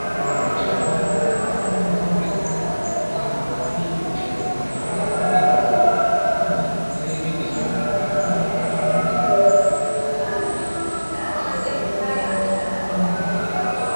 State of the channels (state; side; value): inverted; both; correlation -1.00